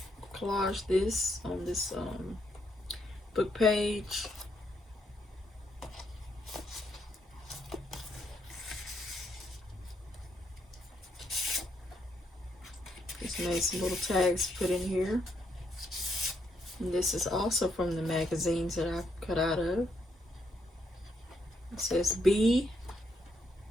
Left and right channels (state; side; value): normal; both; correlation 0.76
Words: collage on this book page. Just made some little tags to put in here. And this is also from the magazines that I cut out of. It says B.